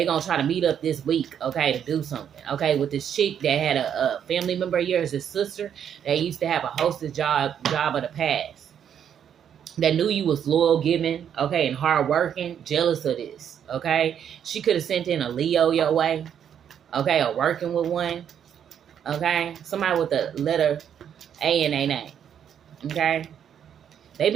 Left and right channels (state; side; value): quieter; left; 8.8 dB